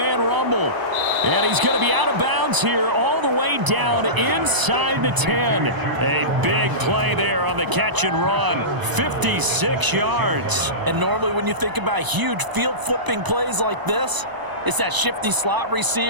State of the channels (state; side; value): late; left; 1.0 ms